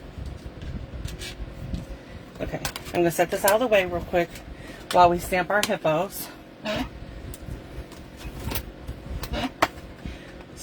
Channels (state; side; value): identical; both; correlation 1.00